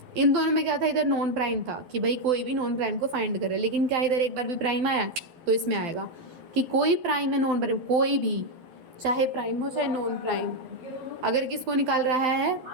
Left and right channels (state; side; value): late; left; 12 ms